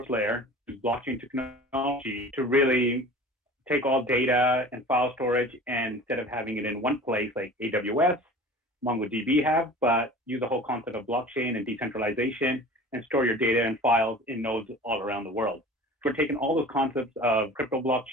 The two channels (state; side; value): normal; both; correlation 0.41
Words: layer, blockchain technology to really take all data and file storage, and instead of having it in one place like AWS, MongoDB have, but use the whole concept of blockchain and decentralization and store your data and files in nodes all around the world. So we're taking all those concepts of crypto